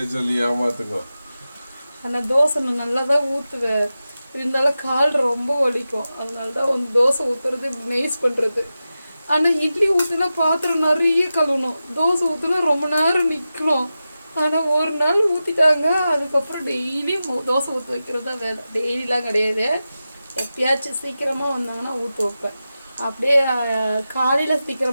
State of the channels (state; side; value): inverted; both; correlation -0.93